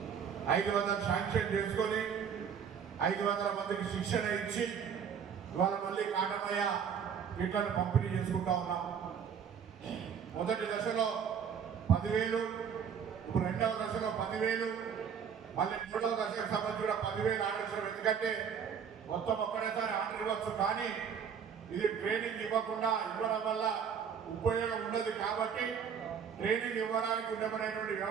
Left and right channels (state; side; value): quieter; left; 7.3 dB